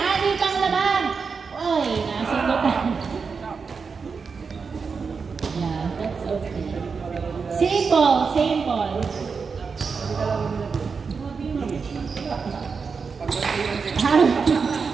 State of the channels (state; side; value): quieter; left; 5.3 dB